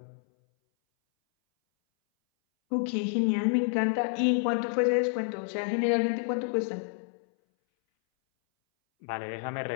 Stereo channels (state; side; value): silent; right; 59 dB below the other